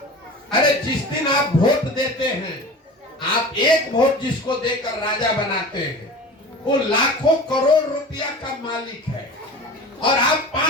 अरे जिस दिन आप वोट देते हैं, आप एक वोट जिसको देकर राजा बनाते हैं, वो लाखों करोड़ रुपया का मालिक है, और आप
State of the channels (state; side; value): normal; both; correlation 0.35